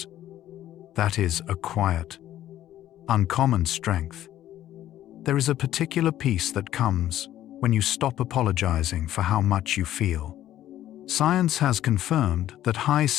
That is a quiet, uncommon strength. There is a particular peace that comes when you stop apologizing for how much you feel. Science has confirmed that high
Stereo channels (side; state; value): right; quieter; 12.7 dB